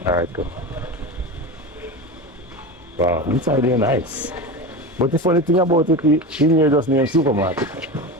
Alright, cool. Wow, inside here nice. But the funny thing about it, in here just named supermarket.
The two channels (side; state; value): both; normal; correlation 0.25